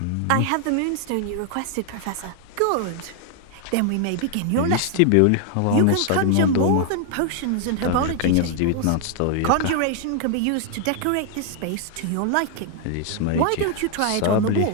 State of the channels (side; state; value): both; different; correlation 0.00